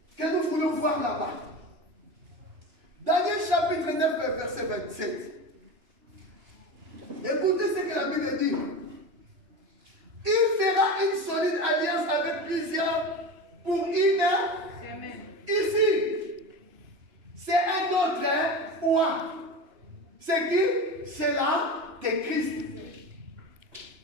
que nous voulons voir là-bas. Daniel chapitre 9, verset 27. Écoutez ce que la Bible dit. Il fera une solide alliance avec plusieurs pour une semaine. Ici, c'est un autre oint. C'est qui? C'est là que Christ.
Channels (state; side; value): late; left; 2.9 ms